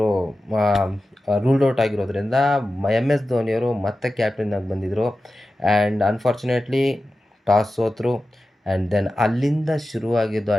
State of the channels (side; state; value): both; normal; correlation 0.93